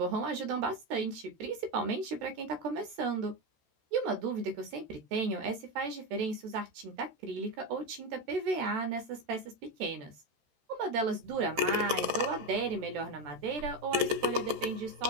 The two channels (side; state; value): left; late; 13 ms